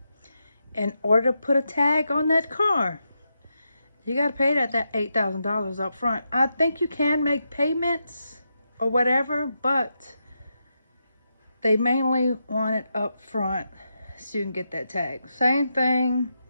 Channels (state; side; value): inverted; both; correlation -0.85